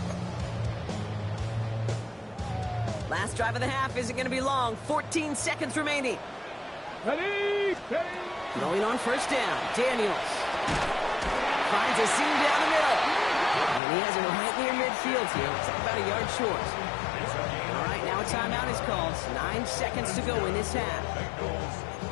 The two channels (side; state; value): right; drops out; at 13.8 s